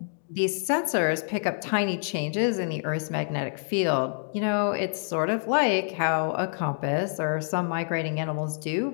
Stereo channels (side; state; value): right; silent; digital silence